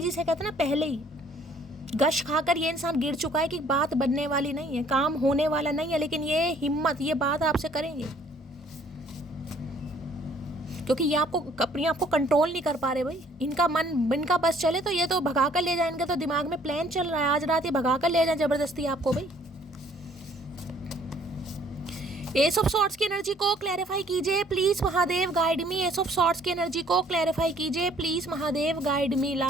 कहते हैं ना, पहले ही गश खाकर ये इंसान गिर चुका है कि बात बनने वाली नहीं है, काम होने वाला नहीं है, लेकिन ये हिम्मत, ये बात आपसे करेंगे, क्योंकि ये आपको अपने आप को कंट्रोल नहीं कर पा रहे भाई। इनका मन, इनका बस चले तो ये तो भगा कर ले जाए, इनके तो दिमाग में प्लान चल रहा है, आज रात ये भगा कर ले जाए जबरदस्ती आपको भाई। एस ऑफ सॉर्ड्स की एनर्जी को क्लैरिफाई कीजिए please Mahadev, guide me. Ace of swords की एनर्जी को क्लैरिफाई कीजिए please Mahadev, guide me.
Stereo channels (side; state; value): both; normal; correlation 0.59